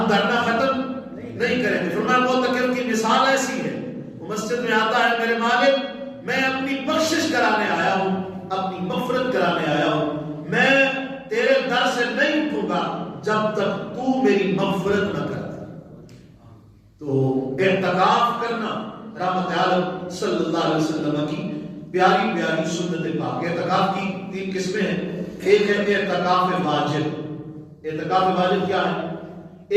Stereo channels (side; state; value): both; identical; correlation 1.00